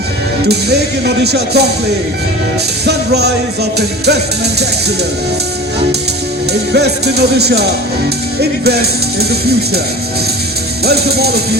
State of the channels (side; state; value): both; normal; correlation 0.37